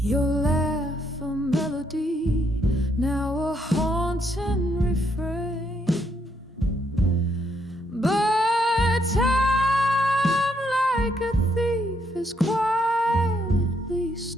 laugh a melody, now a haunting refrain. But time, like a thief, is quietly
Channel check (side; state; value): both; normal; correlation 0.74